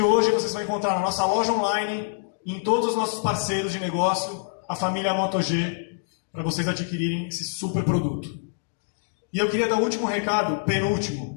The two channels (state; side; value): silent; right; digital silence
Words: vocês vão encontrar na nossa loja online, em todos os nossos parceiros de negócio, a família Moto G, para vocês adquirirem esse super produto. E eu queria dar o último recado,